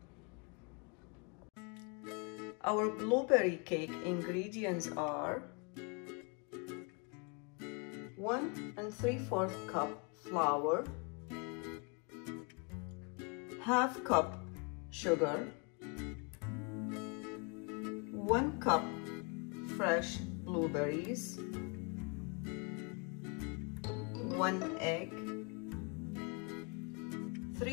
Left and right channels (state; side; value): quieter; right; 32.4 dB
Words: Our blueberry cake ingredients are 1 3/4 cup flour, ½ cup sugar, 1 cup fresh blueberries, 1 egg,